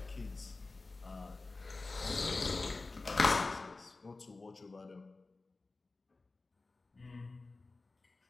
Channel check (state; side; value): quieter; right; 3.5 dB